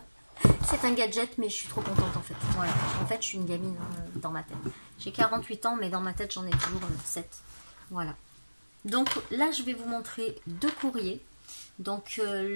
C'est un gadget mais je suis trop contente en fait. Voilà, en fait je suis une gamine dans ma tête. J'ai 48 ans mais dans ma tête j'en ai toujours 7. Voilà. Donc là je vais vous montrer deux courriers. Donc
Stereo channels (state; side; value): inverted; both; correlation -1.00